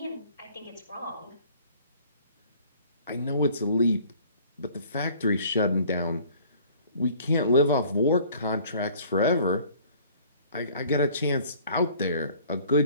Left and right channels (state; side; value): inverted; both; correlation -0.53